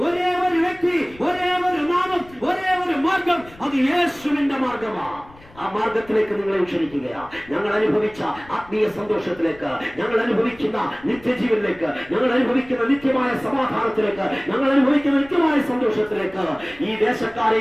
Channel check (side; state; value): left; noise; rumble, 23 dB below the sound